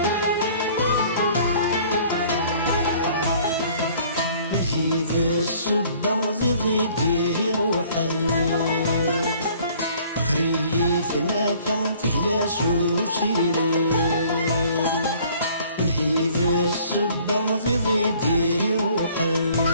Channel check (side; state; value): both; inverted; correlation -0.56